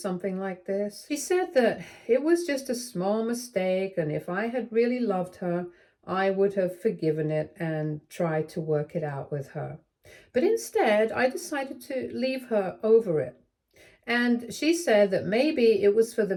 like this. She said that it was just a small mistake, and if I had really loved her, I would have forgiven it and tried to work it out with her. But instead, I decided to leave her over it. And she said that maybe it was for the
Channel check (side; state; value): both; identical; correlation 1.00